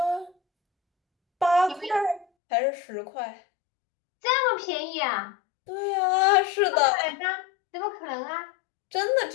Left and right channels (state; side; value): drops out; right; at 2.2 s